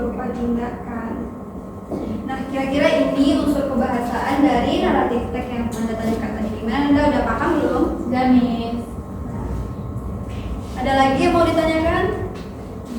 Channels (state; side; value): identical; both; correlation 1.00